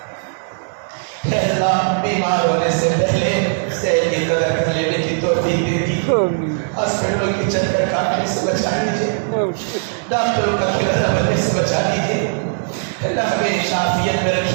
اے اللہ بیمار ہونے سے پہلے صحت کی قدر کر لینے کی توفیق دے دی، ہاسپٹلوں کی چکر کاٹنے سے بچا لیجیے، ڈاکٹروں کا کھلانا بننے سے بچا لیجیے۔ اللہ ہمیشہ عافیت میں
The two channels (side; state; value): left; silent; digital silence